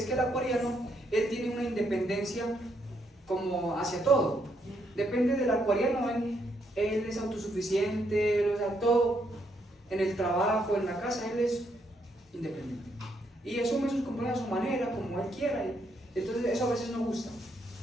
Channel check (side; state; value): both; normal; correlation 0.75